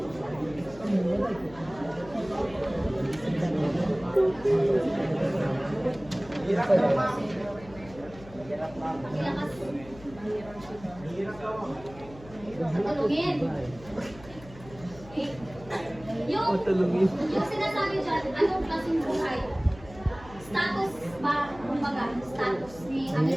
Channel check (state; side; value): noise; left; hum, 19 dB below the sound